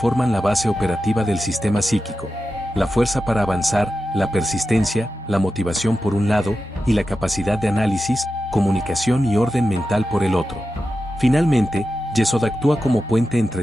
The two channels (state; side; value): normal; both; correlation 0.91